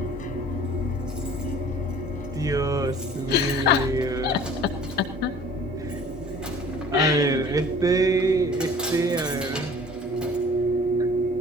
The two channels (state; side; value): normal; both; correlation 0.49